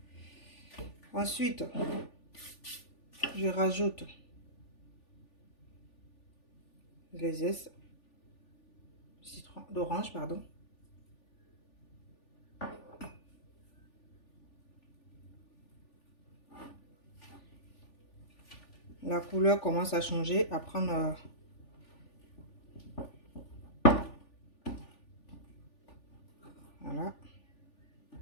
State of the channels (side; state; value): right; late; 3.4 ms